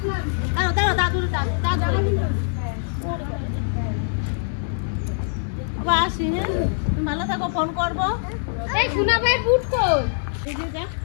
ভালো থাকো, ফোন করবো।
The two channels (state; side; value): silent; right; 62 dB below the other